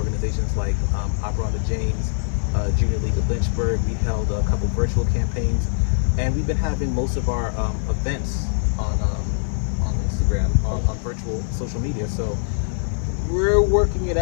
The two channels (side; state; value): right; silent; digital silence